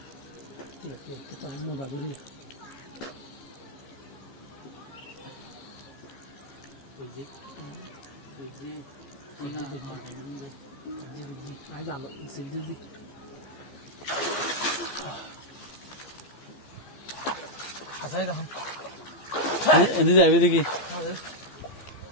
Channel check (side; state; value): right; late; 15 ms